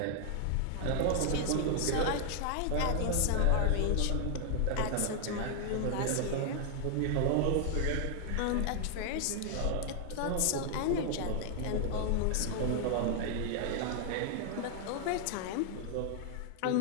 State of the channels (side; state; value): both; different; correlation 0.00